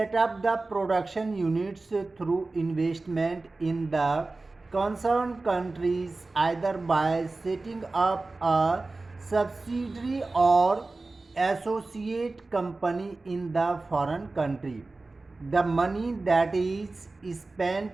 up the production units through investment in the concern countries either by setting up a subsidiary or associate company in the foreign country. The money that is spent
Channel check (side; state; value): left; quieter; 3.4 dB